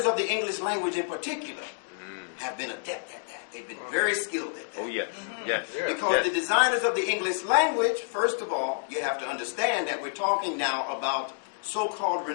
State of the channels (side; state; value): right; silent; digital silence